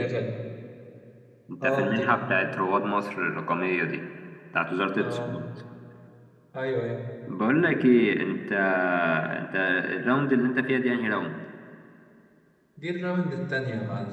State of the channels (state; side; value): identical; both; correlation 1.00